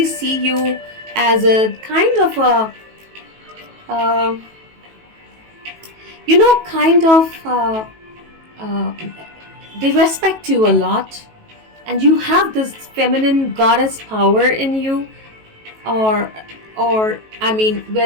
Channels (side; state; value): left; late; 18 ms